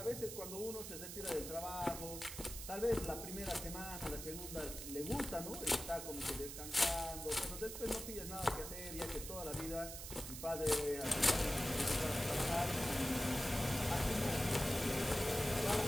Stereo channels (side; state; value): right; noise; hiss, 8 dB below the sound